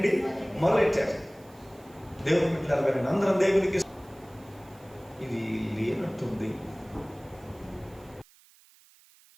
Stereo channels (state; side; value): noise; right; hiss, 27 dB below the sound